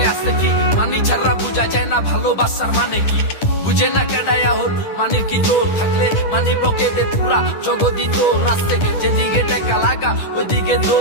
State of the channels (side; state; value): right; late; 10 ms